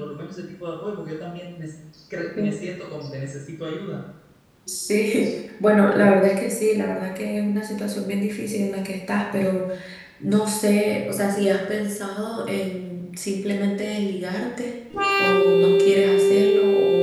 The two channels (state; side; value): identical; both; correlation 1.00